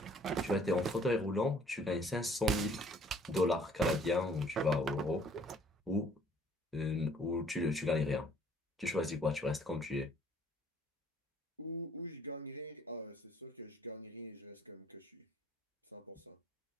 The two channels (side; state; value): both; normal; correlation 0.59